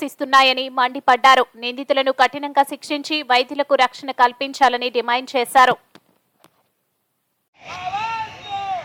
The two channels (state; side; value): identical; both; correlation 1.00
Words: మండిపడ్డారు। నిందితులను కఠినంగా శిక్షించి వైద్యులకు రక్షణ కల్పించాలని డిమాండ్ చేశారు।